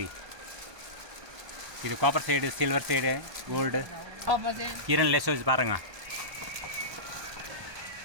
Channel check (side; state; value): left; late; 1.2 ms